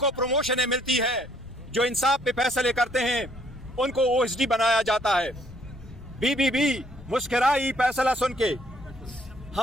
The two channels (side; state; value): left; noise; rumble, 19 dB below the sound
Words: प्रमोशनें मिलती है, जो इंसाफ पे फैसले करते हैं उनको ओएसडी बनाया जाता है। बीबीबी मुस्कुराई फैसला सुन के।